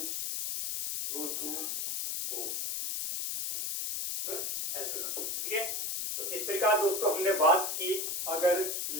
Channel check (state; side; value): noise; left; hiss, 2 dB below the sound